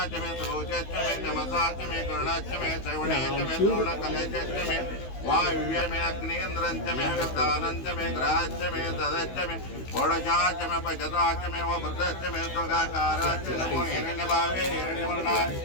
वायुव्यमे अग्नेन्द्रञ्च मे विद्धानञ्च मे ग्रहश्च मे तदश्च मे षोडशाश्च मे पञ्चदाश्च मे वृद्धश्च मे स्वगाकाराश्च नमो हिरण्यभावे हिरण्यवर्णाय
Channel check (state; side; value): late; right; 16 ms